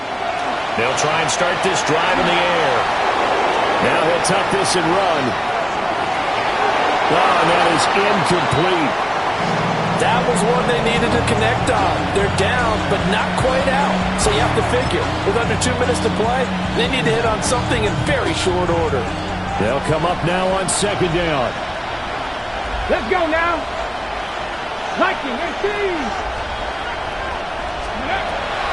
They'll try and start this drive in the air. Now he'll tuck this and run. Oh, and that is incomplete. That was one they needed to connect on. They're down, but not quite out. So you have to figure, with under 2 minutes to play, they need to hit on something in very short order. They'll come up now on 2nd down. Let's go now. Liking, 18.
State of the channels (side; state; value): both; identical; correlation 1.00